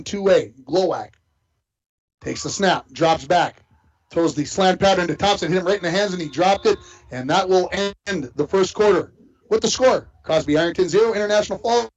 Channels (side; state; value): both; identical; correlation 1.00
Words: Glowacke takes the snap, drops back, throws the slant pattern to Thompson, hit him right in the hands, and he dropped it. And that will end the first quarter with the score. Crosby Ironton 0, International Falls